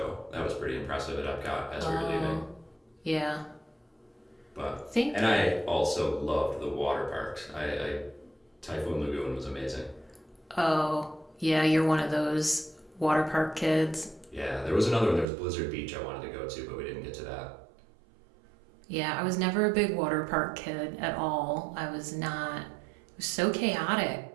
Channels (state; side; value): drops out; left; at 15.2 s